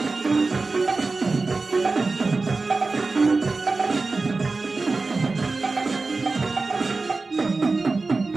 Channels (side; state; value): left; quieter; 3.8 dB